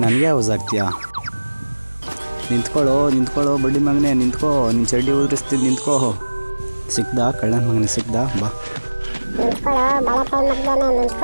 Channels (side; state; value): both; inverted; correlation -1.00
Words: ನನಗೆ ಯೂಸ್ ಆಗ್ತೀಯಾ? ನಿಂತ್ಕೊಳ್ಳೋ ಬಡ್ಡಿ ಮಗನೇ, ನಿಂತ್ಕೋ. ನಿನ್ನ ಚಡ್ಡಿ ಉದುರಿಸ್ತೀನಿ, ನಿಂತ್ಕೋ. ಸಿಕ್ದಾ ಕಳ್ಳನ ಮಗನೇ, ಸಿಕ್ದಾ? ಬಾ. ನಿಂತ್ಕೊಳ್ಳೋ ಬಾಳೆಕಾಯಿ ಮಗ್ದೇನೆ,